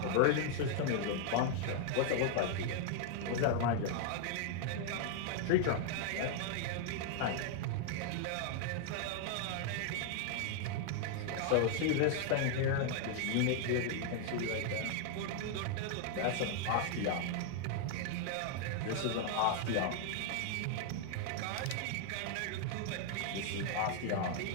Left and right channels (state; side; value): different; both; correlation 0.00